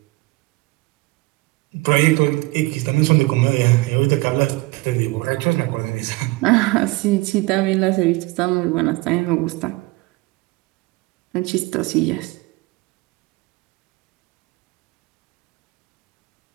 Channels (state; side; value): quieter; left; 22.7 dB